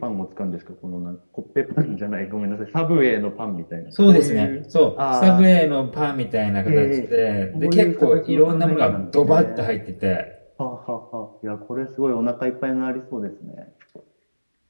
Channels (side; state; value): both; inverted; correlation -1.00